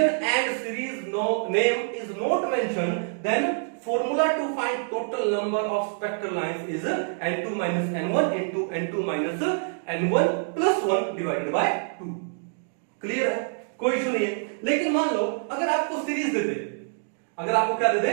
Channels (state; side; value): silent; left; digital silence